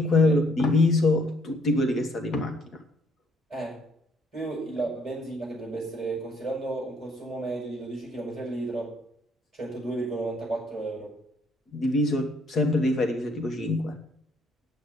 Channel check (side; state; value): both; normal; correlation 0.65